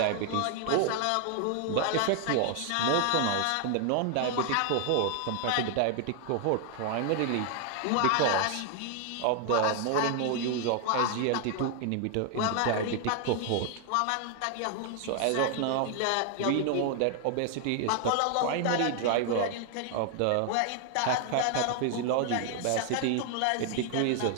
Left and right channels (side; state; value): both; different; correlation 0.00